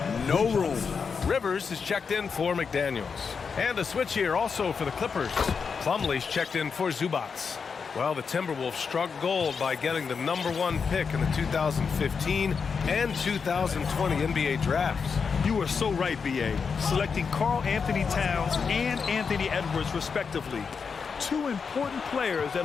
no room. Rivers is checked in for McDaniels. And a switch here also for the Clippers. Plumlee's checked in for Zubac. Well, the Timberwolves struck gold by getting the #1 pick in the 2015 and 2020 NBA drafts. You are so right, B.A. Selecting Karl Anthony Towns and Anthony Edwards, respectively. two important players that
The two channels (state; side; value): quieter; right; 5.7 dB